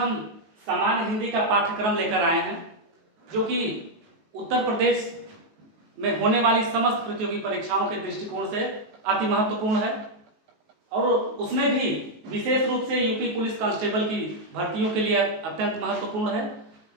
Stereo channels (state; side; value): late; left; 19 ms